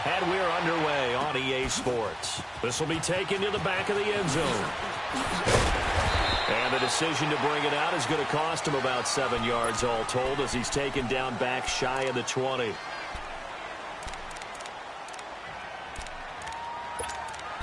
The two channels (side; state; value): both; identical; correlation 1.00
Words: and we're underway on EA Sports. This will be taken to the back of the end zone. And the decision to bring it out is going to cost him about 7 yards all told as he's taken down back shy of the 20.